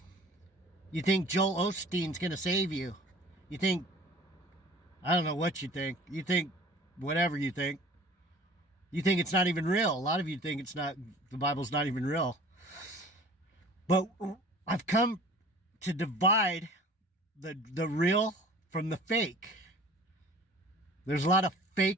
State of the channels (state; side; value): normal; both; correlation 0.47